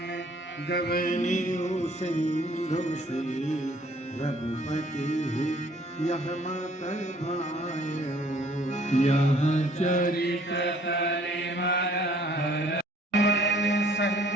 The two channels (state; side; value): normal; both; correlation 0.59